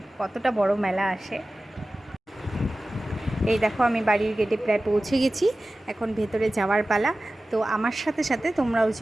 কতটা বড় মেলা আসে। এই দেখো, আমি বাড়ির গেটে প্রায় পৌঁছে গেছি। এখন ভেতরে যাওয়ার পালা। তো আমার সাথে সাথে তোমরাও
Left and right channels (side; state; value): both; normal; correlation 0.96